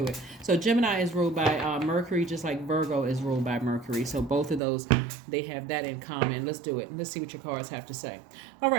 it. So Gemini is ruled by Mercury, just like Virgo is ruled by Mercury. So both of those, they have that in common. Let's do it. Let's see what your cards have to say. All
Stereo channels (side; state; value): left; drops out; at 4.6 s